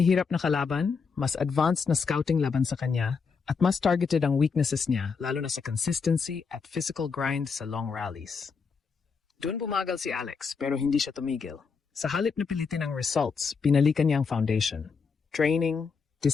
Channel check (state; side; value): quieter; right; 5.4 dB